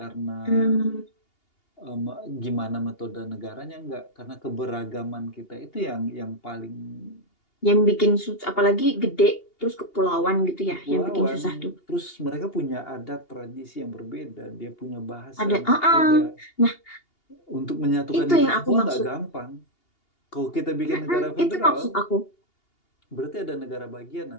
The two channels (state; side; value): late; right; 2.8 ms